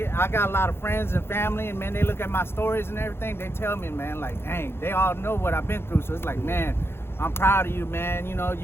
got a lot of friends and family, and man, they look at my stories and everything. They tell me, man, like, dang, they all know what I've been through. So it's like, man, I'm proud of you, man. You know,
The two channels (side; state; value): right; late; 0.11 ms